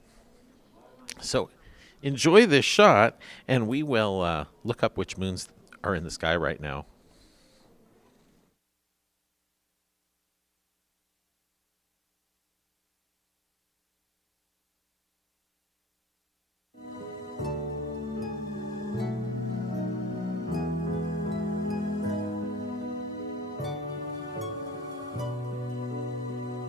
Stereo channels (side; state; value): both; normal; correlation 0.86